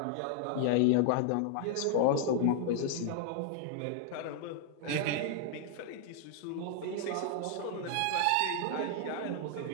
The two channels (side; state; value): both; different; correlation -0.01